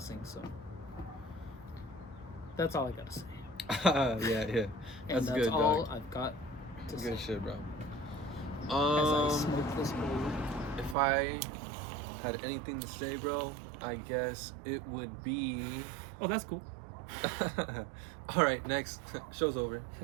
so that's all I gotta say. Yeah. That's good, all dog. I've got to Good say. shit, bro. As I smoke this bowl. If I had anything to say, bro, I guess it would be... Oh, that's cool. All right, next. Show's over.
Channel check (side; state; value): left; drops out; at 11.0 s